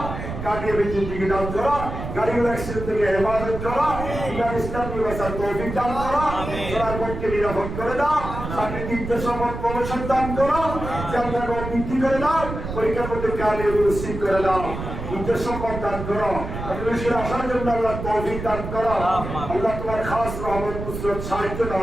কাটিয়ে বিদ্যুৎ দিকে দান করা, গাড়িগুলো অ্যাক্সিডেন্ট থেকে হেফাজত করা, ইসলাম ব্যবস্থার তৌফিক দান করা, চলার পথকে নিরাপদ করে দাও, চাকরি নির্দেশ প্রমোশন দান করো, জান্নাত বৃদ্ধি করে দাও, পরীক্ষার মধ্যে কালিয়ে নসিব করে দাও, উদ্দেশ্য সম্পদ দান করো, মানুষের আসার জন্য আল্লাহ তৌফিক দান করো, আল্লাহ তোমার খাস রহমত নুসরত সাহায্য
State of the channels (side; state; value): right; noise; rumble, 7 dB below the sound